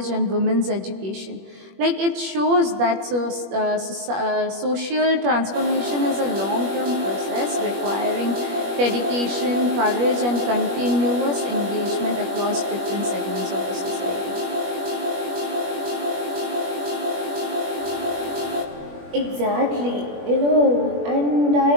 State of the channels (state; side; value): late; left; 21 ms